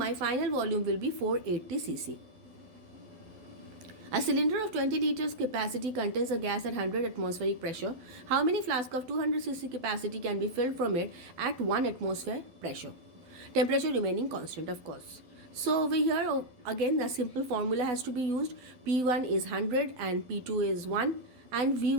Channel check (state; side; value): late; left; 12 ms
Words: final volume will be 480 cc. A cylinder of 20 liters capacity contains a gas at 100 atmospheric pressure. How many flasks of 200 cc capacity can be filled from it at 1 atmosphere pressure? Temperature remaining constant, of course. So over here again the simple formula has to be used. P1 is 100 and P2 is 1 and